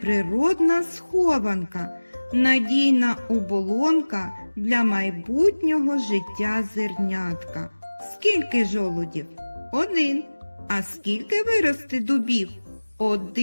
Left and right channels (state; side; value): inverted; both; correlation -1.00